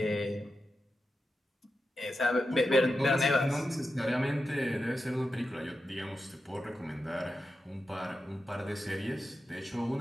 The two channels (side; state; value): both; normal; correlation 0.89